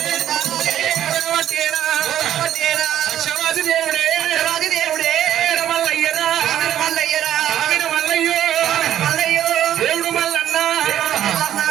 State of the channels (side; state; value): left; quieter; 11.3 dB